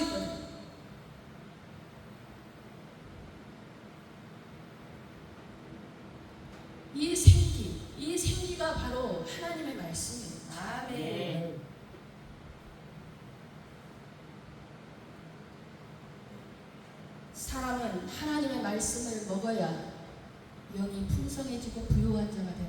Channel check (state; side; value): identical; both; correlation 1.00